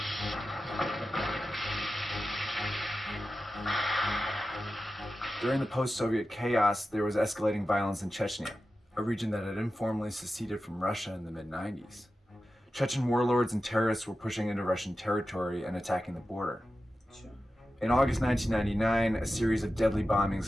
During the post-Soviet chaos, there was escalating violence in Chechnya, a region that had informally seceded from Russia in the mid-90s. Chechen warlords and terrorists were pushing into Russian territory and attacking the border. In August 1999, a series of deadly bombings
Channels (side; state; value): both; normal; correlation 0.93